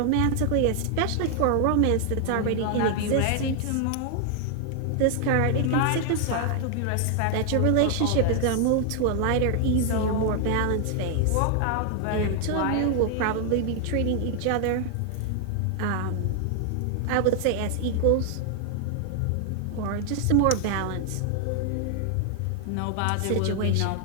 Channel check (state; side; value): different; both; correlation 0.00